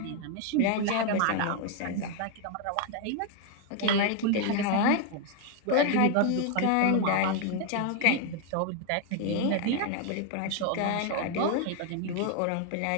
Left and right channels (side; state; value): both; different; correlation 0.01